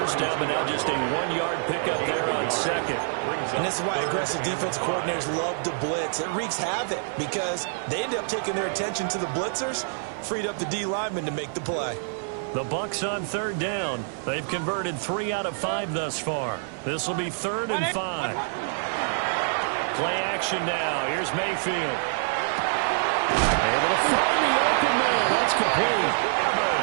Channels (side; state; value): left; silent; 59 dB below the other